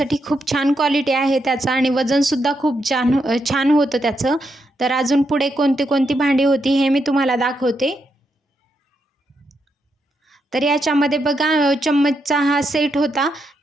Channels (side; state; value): both; normal; correlation 0.81